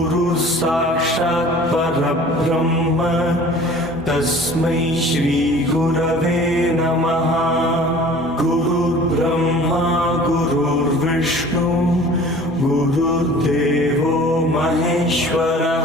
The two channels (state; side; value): normal; both; correlation 0.46